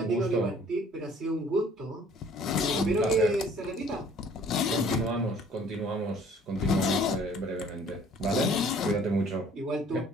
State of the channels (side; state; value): both; normal; correlation 0.55